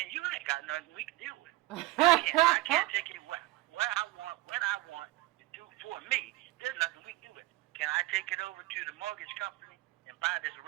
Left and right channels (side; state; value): left; quieter; 20.5 dB